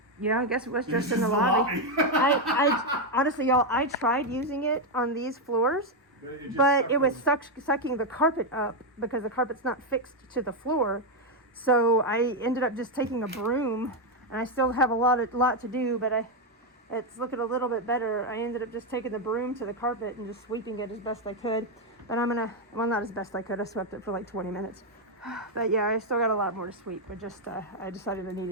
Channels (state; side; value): normal; both; correlation 0.03